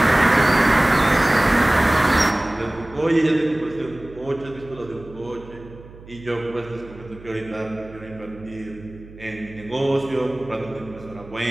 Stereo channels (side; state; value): right; noise; hum, 19 dB below the sound